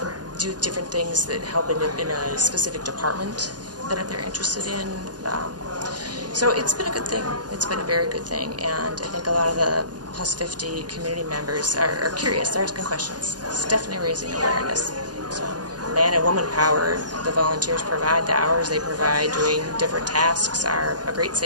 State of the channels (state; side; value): late; left; 0.69 ms